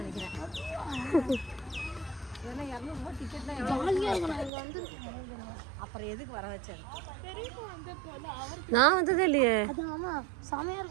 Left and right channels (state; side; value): drops out; left; at 4.5 s